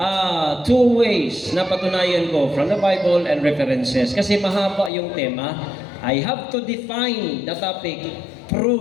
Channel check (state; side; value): drops out; right; at 4.9 s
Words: two ways na patunayan ko from the Bible and references. Kasi mahaba yung tema. I have to define the topic,